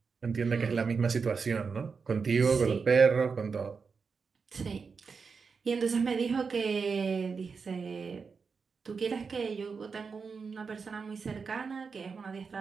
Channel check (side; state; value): left; quieter; 5.3 dB